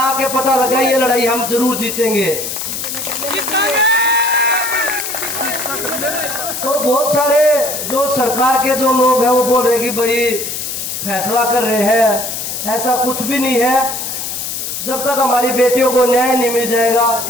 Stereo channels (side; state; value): left; noise; hiss, 5 dB below the sound